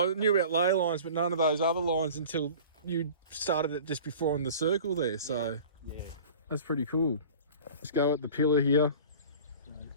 knew about ley lines, but none of those other lines until you started it just before on the circle there, so yeah. That's pretty cool. Let's go at the pillar here. So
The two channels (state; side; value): inverted; both; correlation -0.42